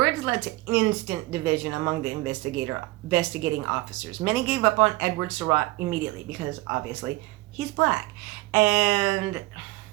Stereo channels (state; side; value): quieter; left; 20.5 dB